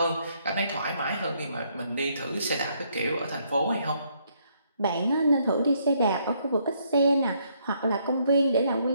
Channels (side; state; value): both; inverted; correlation -0.71